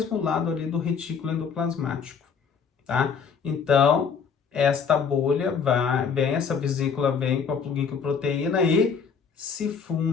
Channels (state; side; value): quieter; right; 6.2 dB